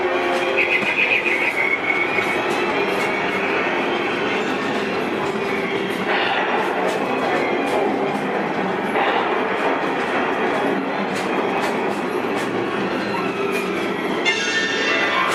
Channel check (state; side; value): identical; both; correlation 1.00